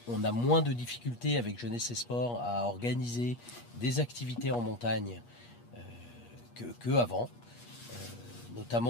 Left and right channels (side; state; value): right; late; 8.4 ms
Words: on a moins de difficultés avec Jeunesse et Sport à organiser des activités en montagne que avant,